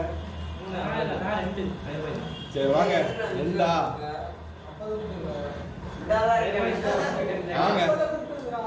சரி வாங்க எல்லா வாங்க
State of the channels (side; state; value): both; identical; correlation 1.00